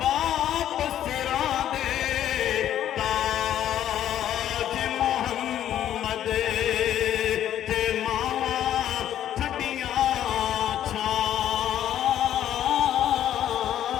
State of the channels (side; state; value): right; quieter; 11.1 dB